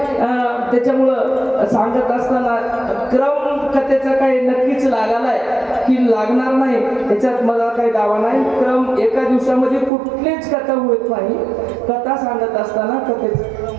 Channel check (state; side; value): drops out; left; at 9.9 s